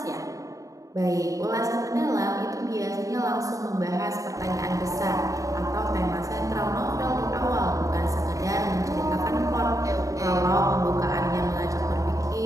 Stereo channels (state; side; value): late; left; 0.16 ms